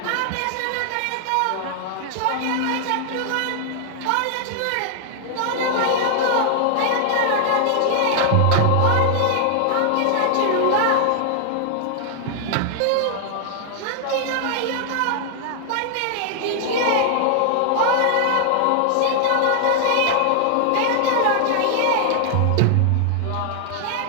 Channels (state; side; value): different; both; correlation 0.00